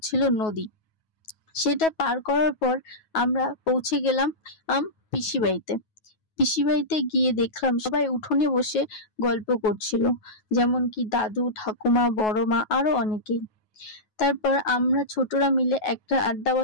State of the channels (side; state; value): right; late; 9.3 ms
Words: নদী। সেটা পার করার পর আমরা পৌঁছে গেলাম পিসি বাড়িতে। পিসি বাড়িতে গিয়ে দেখলাম সবাই উঠোনে বসে গল্প করছিল, যেমন কি দাদু, ঠাকুমা, বড় মা, আরো অনেকেই। তারপর আমরা ছোটরা মিলে একটা আড্ডা